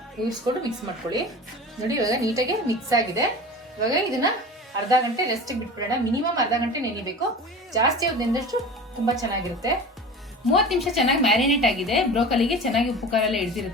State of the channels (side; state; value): both; normal; correlation 0.35